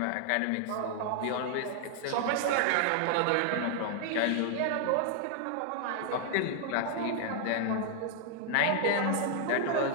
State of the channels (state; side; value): different; both; correlation 0.00